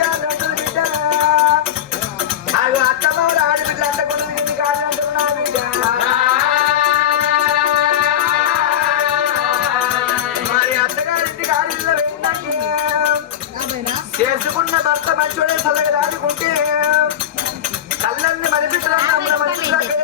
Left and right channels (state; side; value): quieter; right; 10.5 dB